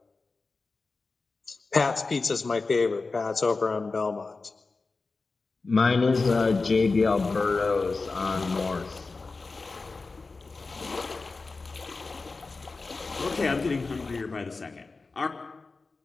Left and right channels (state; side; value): quieter; right; 3.9 dB